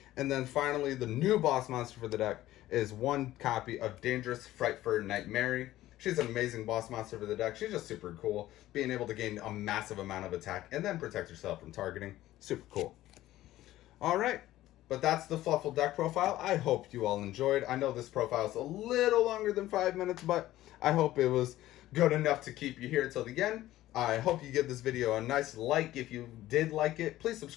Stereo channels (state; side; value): quieter; right; 15.0 dB